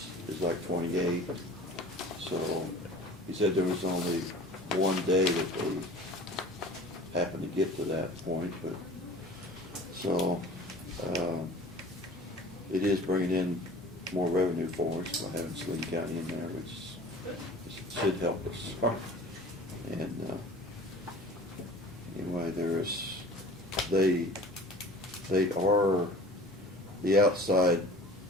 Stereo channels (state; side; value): normal; both; correlation 0.44